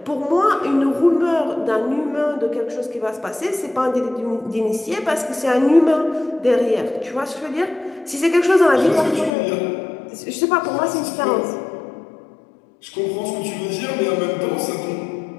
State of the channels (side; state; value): right; drops out; at 9.3 s